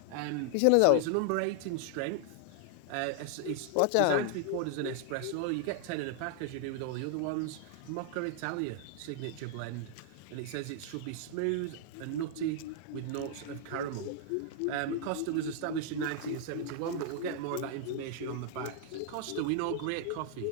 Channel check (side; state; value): both; different; correlation 0.00